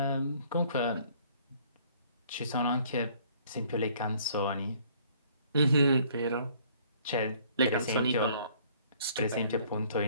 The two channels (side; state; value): both; inverted; correlation -0.59